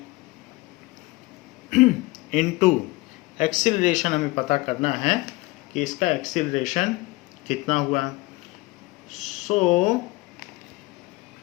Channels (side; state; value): right; quieter; 21.7 dB